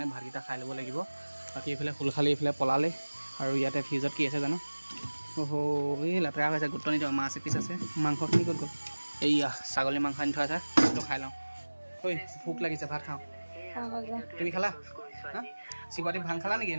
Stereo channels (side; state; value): both; inverted; correlation -1.00